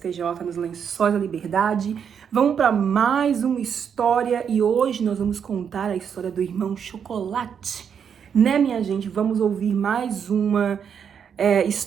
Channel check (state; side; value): quieter; left; 7.5 dB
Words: nos Lençóis da Liberdade. Vamos para mais uma história e hoje nós vamos contar a história do irmão Chocolate. Né, minha gente? Vamos ouvir mais uma